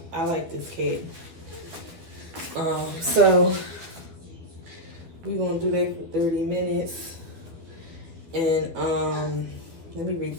I like this cap. So we're gonna do that for 30 minutes. And let me read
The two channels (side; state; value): left; late; 12 ms